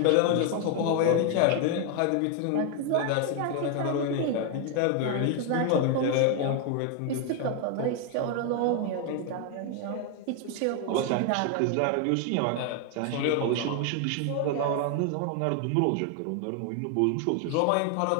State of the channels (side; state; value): both; different; correlation 0.01